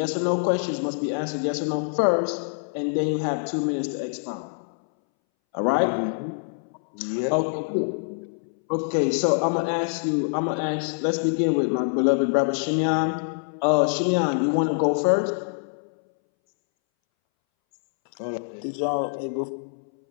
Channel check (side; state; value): right; silent; 62 dB below the other